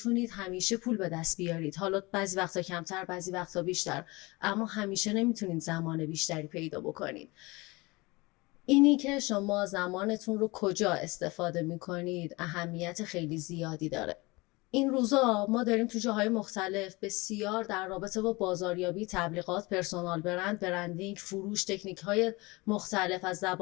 همیشه پول به دست بیارید، حالا بعضی وقتا کمتر بعضی وقتا بیشتر، اما همیشه نمیتونید زمان بیشتری پیدا بکنید. اینی که شما زمانتون رو کجا استفاده میکنید اهمیت خیلی زیادی داره. این روزا ما داریم تو جاهای مختلف بسیار در رابطه با بازاریابی، تبلیغات، پرسونال برند، برندینگ، فروش، تکنیک‌های مختلف از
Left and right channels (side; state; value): right; quieter; 23.9 dB